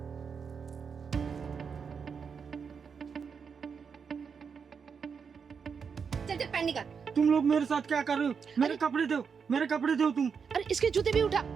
चल चल पैंट निकाल। तुम लोग मेरे साथ क्या कर रहे हो? मेरे कपड़े दो, मेरे कपड़े दो तुम। अरे इसके जूते भी उठा।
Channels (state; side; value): quieter; left; 6.2 dB